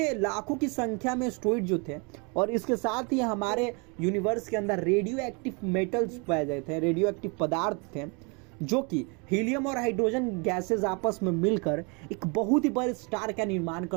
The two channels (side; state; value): left; quieter; 32.2 dB